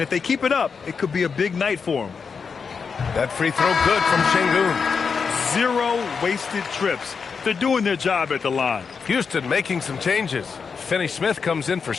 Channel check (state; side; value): quieter; right; 5.7 dB